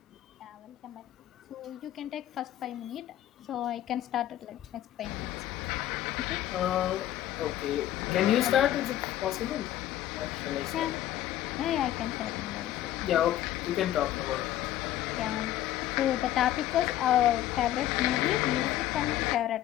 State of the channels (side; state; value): right; quieter; 12.9 dB